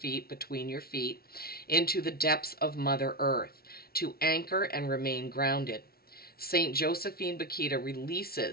between your feet, into the depths of Mother Earth, to anchor and remain grounded. St. Josephine Bakita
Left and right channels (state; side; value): late; right; 0.44 ms